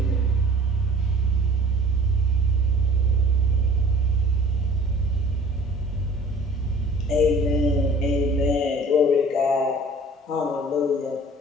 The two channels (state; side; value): normal; both; correlation 0.48